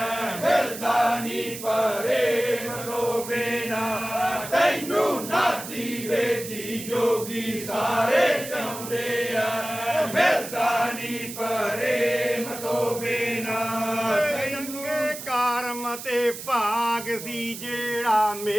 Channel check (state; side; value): noise; right; hiss, 10 dB below the sound